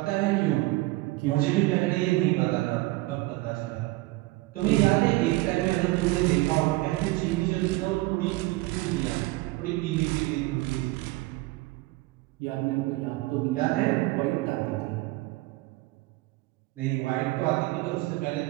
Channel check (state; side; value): quieter; left; 20.6 dB